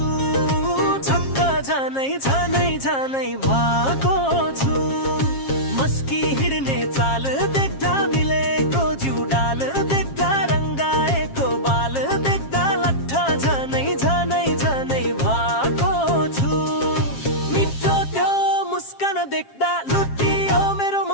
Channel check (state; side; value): late; right; 7.4 ms